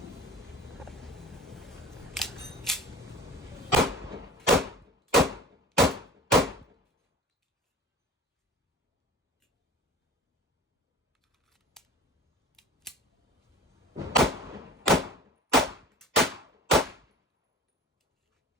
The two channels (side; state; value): both; normal; correlation 0.40